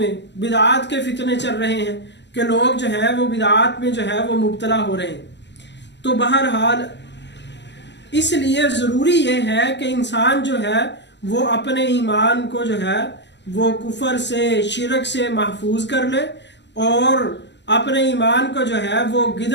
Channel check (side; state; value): right; late; 0.51 ms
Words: کے فتنے چل رہے ہیں کہ لوگ جو ہے وہ بدعات میں جو ہے وہ مبتلا ہو رہے ہیں۔ تو بہرحال اس لیے ضروری یہ ہے کہ انسان جو ہے وہ اپنے ایمان کو جو ہے وہ کفر سے، شرک سے محفوظ کر لے اور اپنے ایمان کو جو ہے وہ